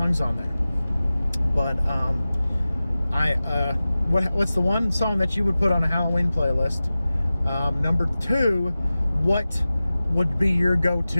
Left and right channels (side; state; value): both; inverted; correlation -0.96